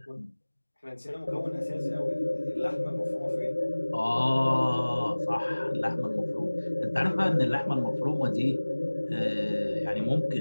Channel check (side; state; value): both; inverted; correlation -1.00